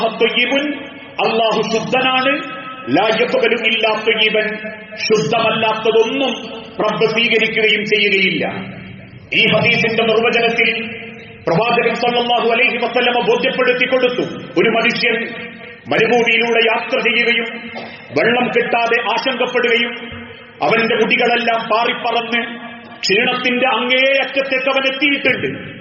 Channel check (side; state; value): both; identical; correlation 1.00